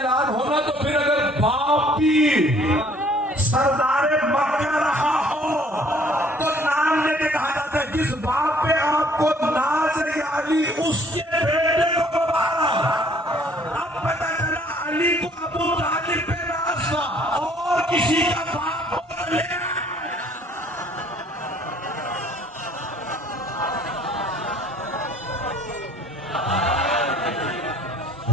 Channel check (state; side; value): normal; both; correlation 0.58